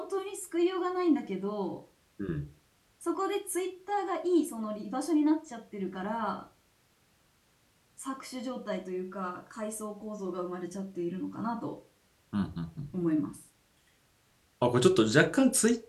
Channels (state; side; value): identical; both; correlation 1.00